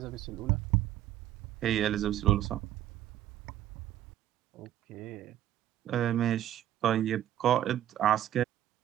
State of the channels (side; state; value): left; quieter; 12.3 dB